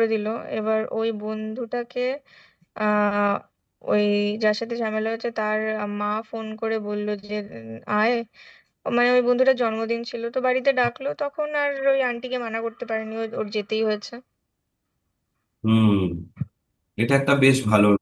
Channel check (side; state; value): both; identical; correlation 1.00